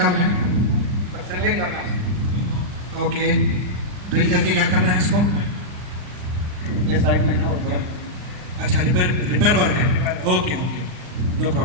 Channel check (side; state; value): left; late; 39 ms